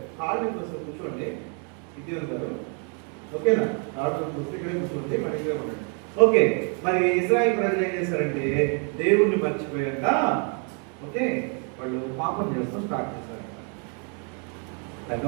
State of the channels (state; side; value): quieter; left; 39.1 dB